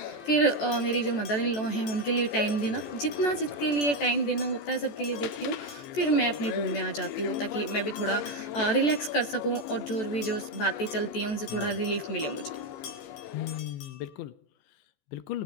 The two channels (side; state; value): right; late; 14 ms